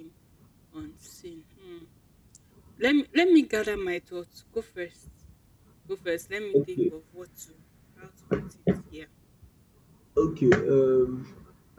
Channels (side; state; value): both; identical; correlation 1.00